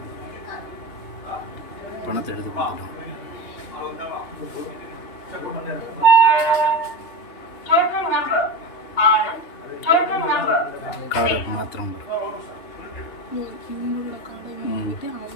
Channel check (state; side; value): late; right; 2.9 ms